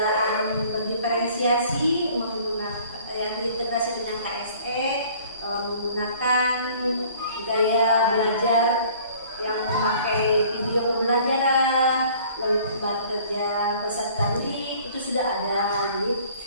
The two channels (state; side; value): inverted; both; correlation -0.53